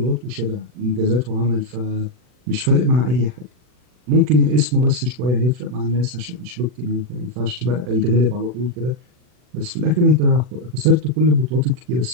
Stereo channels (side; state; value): left; late; 40 ms